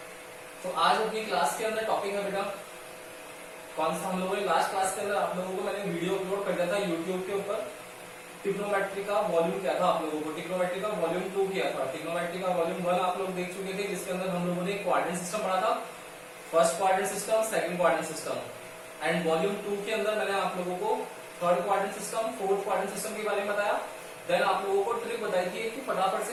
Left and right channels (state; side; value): identical; both; correlation 1.00